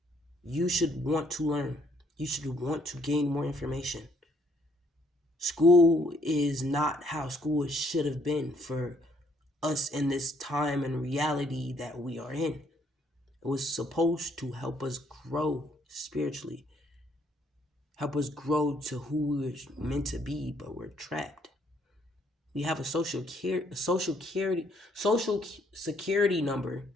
You should want to learn. You should want to gain more information. School is not how school should have been for us in this time and reality that we are in. It was supposed to help us grow spiritually, help us grow to who we were meant to be, but we're trapped. We have a social security number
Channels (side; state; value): both; normal; correlation 0.68